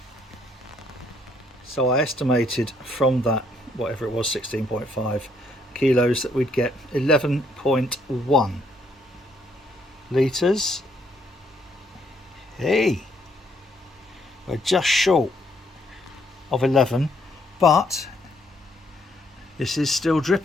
So I estimated from that, whatever it was, 16.5 kilos, that we'd get 11.1 litres. Hey, we're just short of 11, but this is still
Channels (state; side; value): normal; both; correlation 0.70